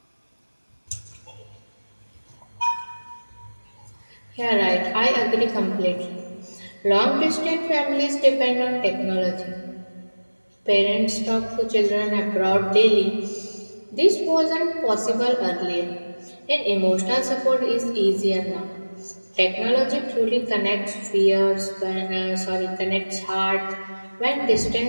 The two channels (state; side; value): inverted; both; correlation -1.00